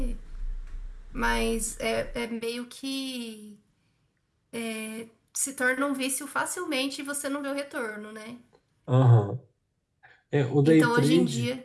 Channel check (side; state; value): both; identical; correlation 1.00